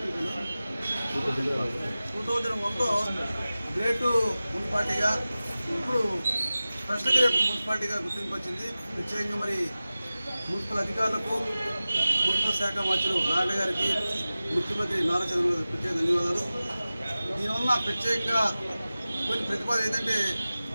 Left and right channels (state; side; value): inverted; both; correlation -0.96